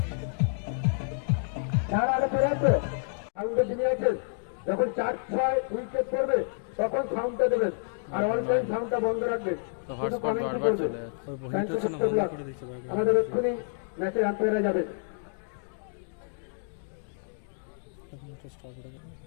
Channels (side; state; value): right; silent; digital silence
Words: যারা আগে ফেরে আছে সাউন্ডের দিনে আছে যখন 4-6 উইকেট পড়বে তখন সাউন্ডটা দেবেন আর অল টাইম সাউন্ডটা বন্ধ রাখবেন তো হটস্পট বারবার চলে যাচ্ছে ওই হিট হচ্ছে না বন্ধ করে দিচ্ছে বারবার আমাদের এক্ষুনি ম্যাচের আম্পায়াররা যাবে স্টপ করে দেবে।